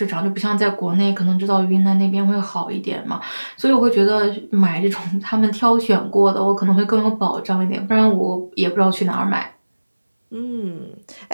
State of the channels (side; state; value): both; inverted; correlation -1.00